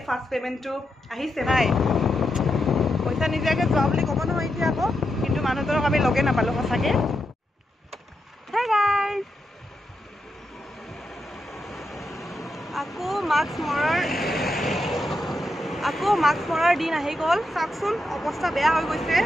ফাৰ্ষ্ট পেমেণ্টটো আহিছে নাই পইচা নিদিয়াকৈ যোৱা বুলি ক'ব নহয় এতিয়া আকৌ কিন্তু মানুহজনক আমি লগে নাপালোঁ সঁচাকৈ হে গাইজ আকৌ মাস্ক মৰাৰ দিন আহি গ'ল চাওকচোন অৱস্থা বেয়া হৈ গৈছে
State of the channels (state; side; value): normal; both; correlation 0.85